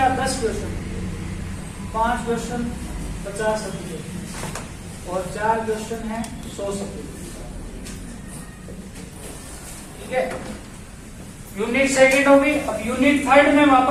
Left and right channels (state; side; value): identical; both; correlation 1.00